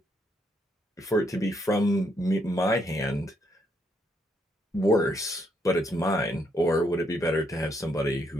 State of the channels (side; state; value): both; normal; correlation 0.74